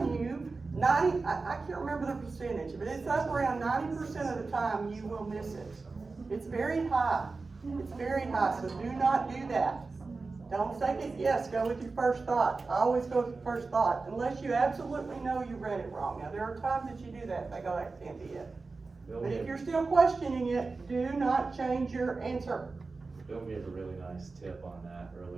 you, I can't remember the percentage, but it's up around 90% of the time you will miss it. It's very high. It's very high, so do not do that. Don't second guess, go with your first thought. I always go with your first thought, unless you absolutely know you read it wrong. Now, there are times that you do that, they go, that can't be it. But if you're still questioning it, do not change your answer. Bill gave a really nice tip on that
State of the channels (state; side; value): quieter; left; 4.0 dB